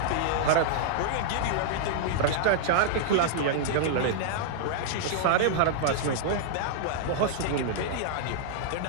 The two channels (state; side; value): different; both; correlation -0.01